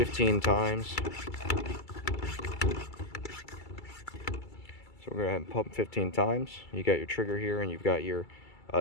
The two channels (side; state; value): right; late; 2.3 ms